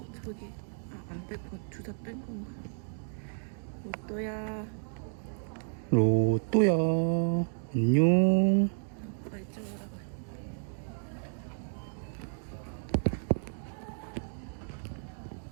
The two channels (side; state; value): left; silent; digital silence